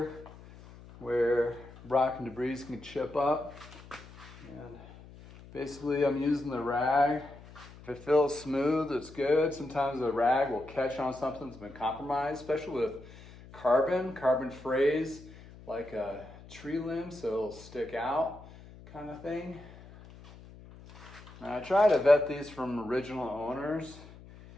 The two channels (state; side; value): noise; left; hum, 19 dB below the sound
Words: where rock and debris can chip up. And basically I'm using the rag. If it feels smooth, it's good. Sometimes the rag will catch on something that's been compromised, especially with carbon frays like a tree limb, so it'll stick out kind of thing. Now I try to vet these from original owners.